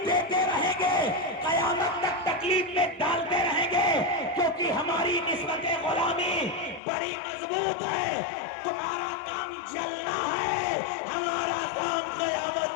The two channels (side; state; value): right; drops out; at 6.8 s